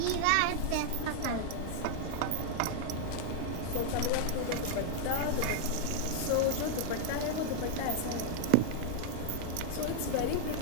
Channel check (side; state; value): both; different; correlation 0.00